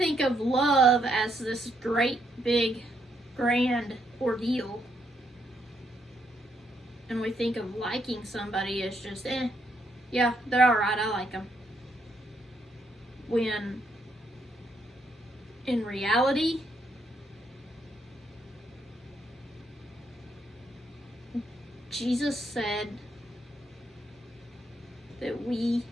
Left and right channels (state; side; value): normal; both; correlation 0.76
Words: of love as this great, big, grand ordeal. And we think of liking somebody as just, yeah, they're alright, I like them. When, in reality, Jesus said that we